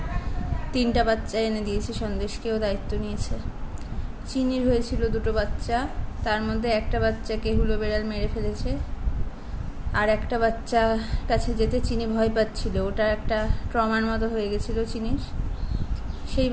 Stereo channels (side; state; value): both; identical; correlation 1.00